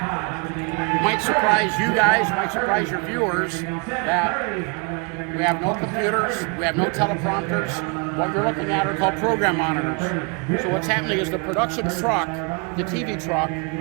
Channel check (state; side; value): quieter; left; 33.3 dB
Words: Might surprise you guys, might surprise your viewers that we have no computers, we have no teleprompters. What we're looking at are called program monitors. So what's happening is the production truck, the TV truck,